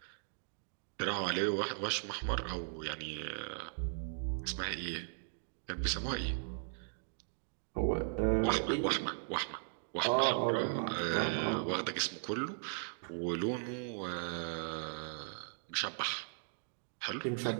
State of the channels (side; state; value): left; silent; digital silence